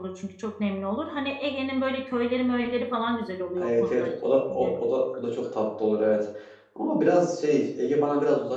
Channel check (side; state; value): both; identical; correlation 1.00